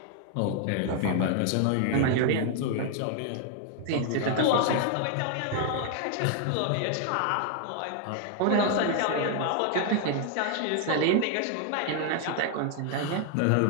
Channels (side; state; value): both; different; correlation 0.00